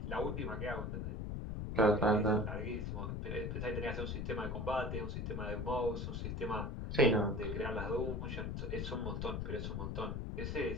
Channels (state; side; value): noise; left; rumble, 3 dB below the sound